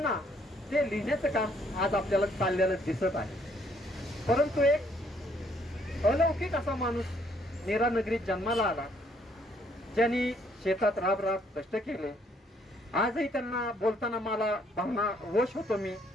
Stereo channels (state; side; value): normal; both; correlation 0.67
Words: ते लिहिण्याचं काम आज आपल्याला चाललेलं दिसत आहे. परंतु एक अलौकिक असा माणूस नेरा नगरीत जन्माला आला, ज्यांनी शेतात राब कष्ट केले. आजही त्यांना बोलताना मला भावना वश होतो मी